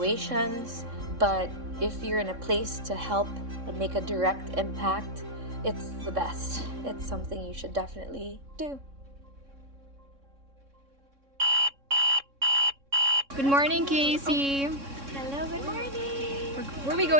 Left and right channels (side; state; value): left; late; 3.6 ms